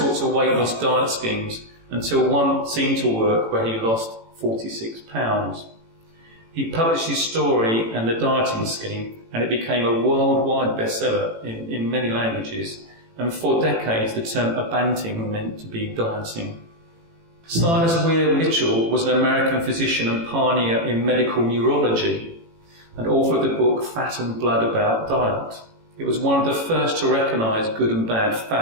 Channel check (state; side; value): late; left; 18 ms